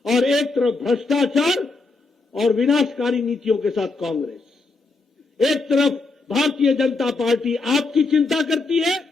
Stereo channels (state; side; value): quieter; right; 3.7 dB